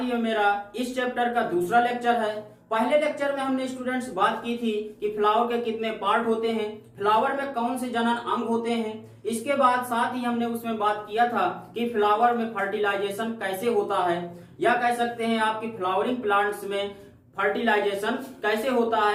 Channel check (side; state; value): both; identical; correlation 1.00